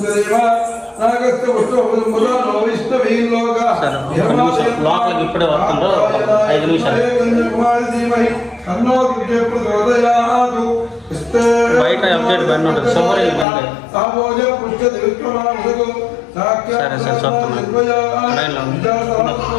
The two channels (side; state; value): right; drops out; at 13.5 s